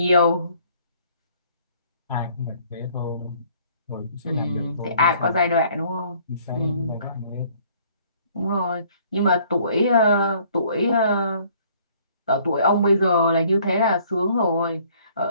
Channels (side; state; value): both; inverted; correlation -0.59